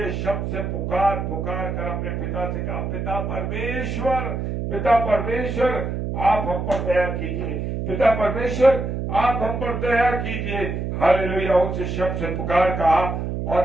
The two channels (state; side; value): noise; right; hum, 3 dB below the sound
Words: शब्द से पुकार कर अपने पिता से कहा, पिता परमेश्वर आप हम पर दया कीजिए। पिता परमेश्वर आप हम पर दया कीजिए। हालेलुया। ऊंचे शब्द से पुकार कहा,